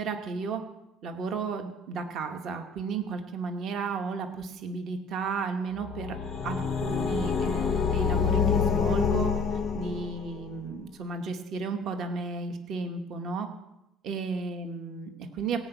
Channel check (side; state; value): both; normal; correlation 0.50